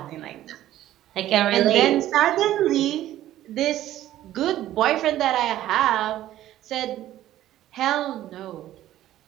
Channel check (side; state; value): left; quieter; 13.4 dB